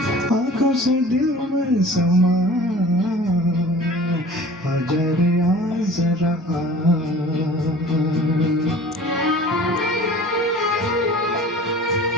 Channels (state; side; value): normal; both; correlation 0.44